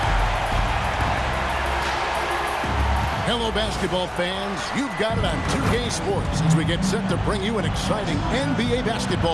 Hello, basketball fans. You've got it on 2K Sports as we get set to bring you an exciting NBA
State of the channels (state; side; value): identical; both; correlation 1.00